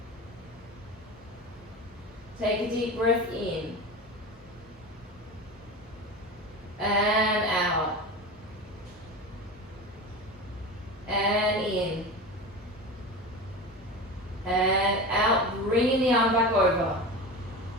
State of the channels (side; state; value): both; normal; correlation 0.28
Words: Take a deep breath in. And out. And in. And out, bringing the arm back over.